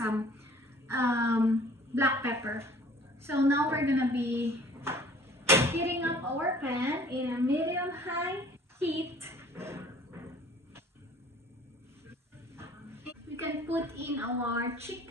black pepper. So now we're gonna be heating up our pan in a medium-high heat. We can put in our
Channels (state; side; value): normal; both; correlation 0.52